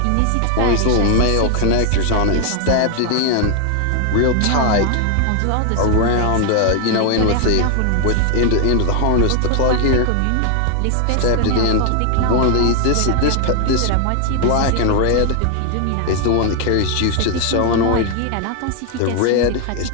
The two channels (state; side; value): different; both; correlation 0.00